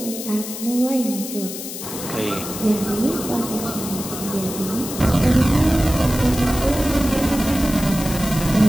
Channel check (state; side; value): noise; left; hiss, 9 dB below the sound